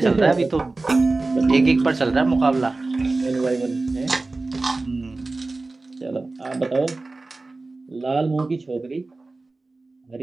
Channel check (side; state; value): left; quieter; 3.4 dB